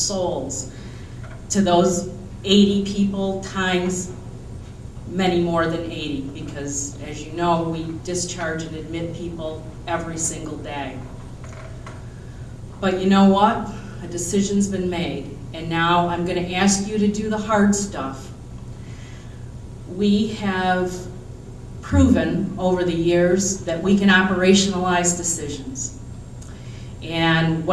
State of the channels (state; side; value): identical; both; correlation 1.00